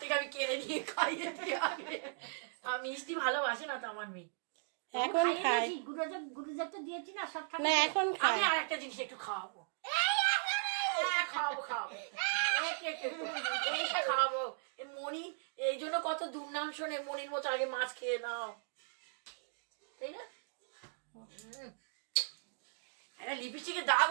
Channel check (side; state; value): left; silent; digital silence